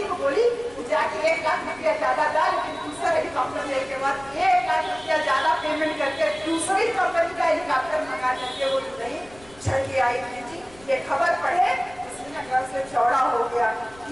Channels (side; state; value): left; noise; rumble, 24 dB below the sound